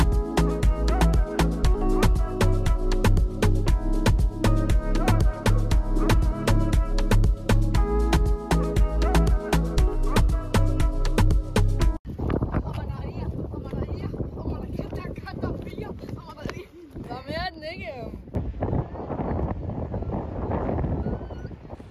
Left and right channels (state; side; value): identical; both; correlation 1.00